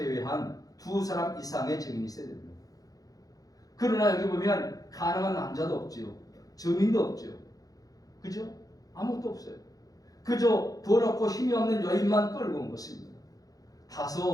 두 사람 이상의 증인이 있어야 됩니다. 그러나 여기 보면 가능한 남자도 없지요. 증인도 없죠. 그죠? 아무것도 없어요. 그저 돈 없고 힘이 없는 여인만 끌고 온 것입니다.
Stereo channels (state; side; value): late; right; 0.17 ms